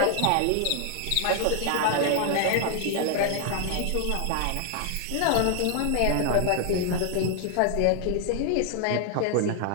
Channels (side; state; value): both; different; correlation 0.00